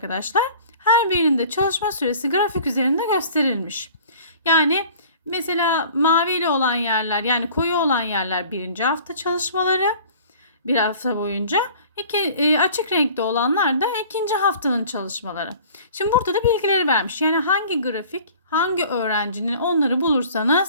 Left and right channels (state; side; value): inverted; both; correlation -0.47